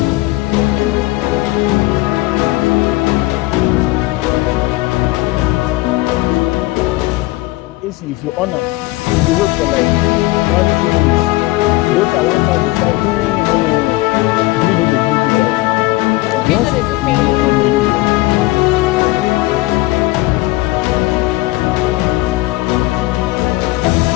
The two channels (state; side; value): quieter; right; 20.0 dB